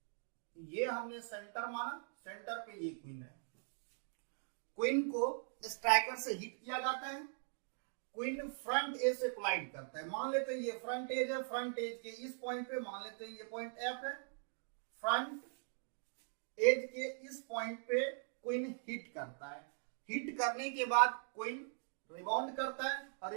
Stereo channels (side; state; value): left; silent; digital silence